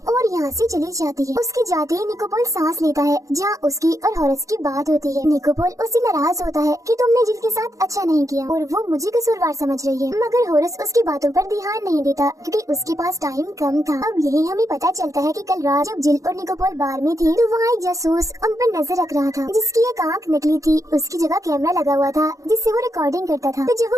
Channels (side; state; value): left; late; 0.16 ms